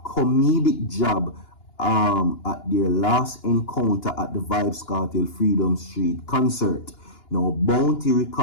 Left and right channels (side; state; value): right; late; 2.9 ms